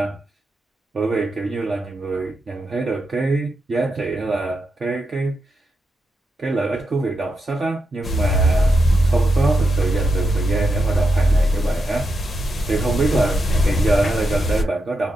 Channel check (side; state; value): both; normal; correlation 0.85